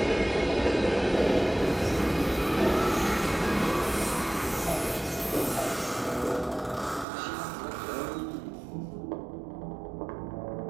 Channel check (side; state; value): left; drops out; at 7.1 s